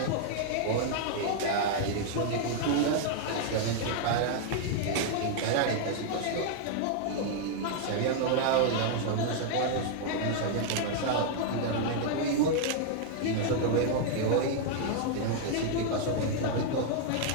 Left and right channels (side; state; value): both; different; correlation 0.00